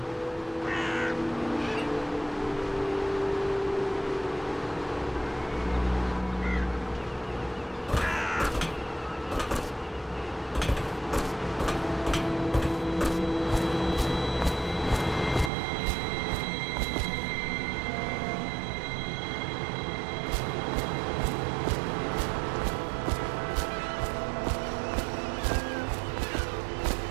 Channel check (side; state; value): left; drops out; at 15.5 s